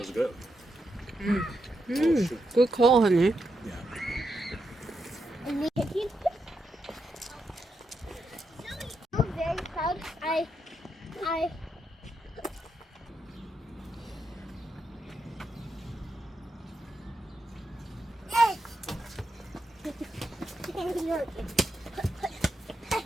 was good. Good call, honey. Yeah. And we keep. I'm very proud. I.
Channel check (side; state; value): both; normal; correlation 0.84